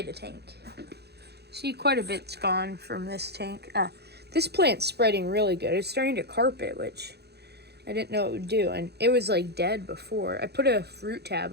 tank. See, quite a bit's gone from this tank. This plant's spreading really good. It's starting to carpet, which I didn't know it would do, and it was like dead before. I put a fruit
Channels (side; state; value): left; late; 0.48 ms